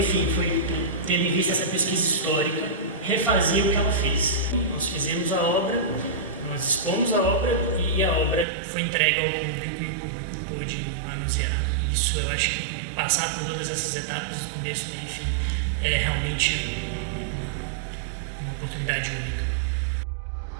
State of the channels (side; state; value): left; drops out; at 8.5 s